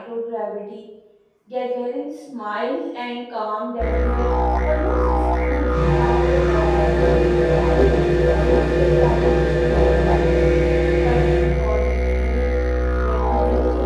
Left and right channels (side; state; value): both; identical; correlation 1.00